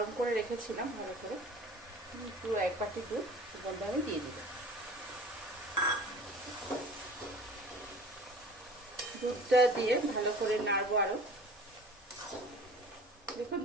করে রেখেছিলাম ভালো করে। পুরো 1 বাটি দুধ এর মধ্যে আমি দিয়ে দিব। দুধটা দিয়ে ভালো করে নাড়বো আরো। দেখুন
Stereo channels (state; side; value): normal; both; correlation 0.44